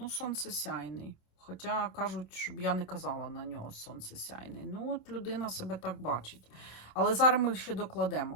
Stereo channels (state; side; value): late; right; 27 ms